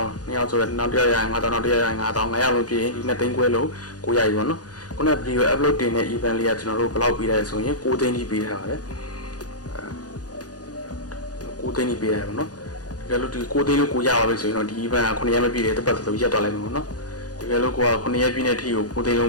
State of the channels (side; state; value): right; late; 0.68 ms